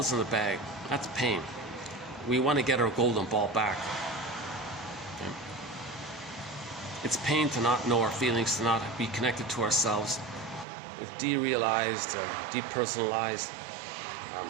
in the bag, that's pain. We want to get our golden ball back. Okay. It's pain to not know our feelings, to not be connected to ourselves. It's derealized, depersonalized,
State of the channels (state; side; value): drops out; left; at 10.7 s